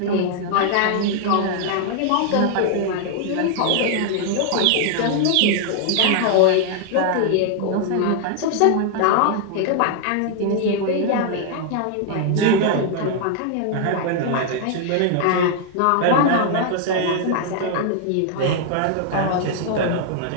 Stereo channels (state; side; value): different; both; correlation 0.00